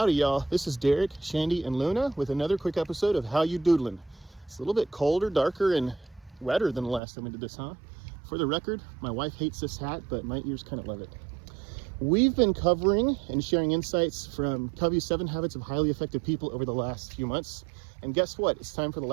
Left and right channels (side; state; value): left; drops out; at 7.0 s